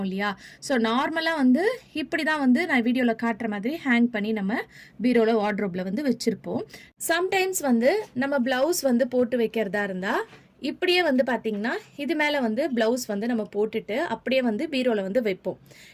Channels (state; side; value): identical; both; correlation 1.00